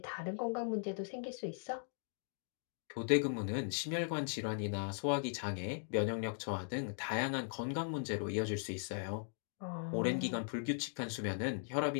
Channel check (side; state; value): right; silent; digital silence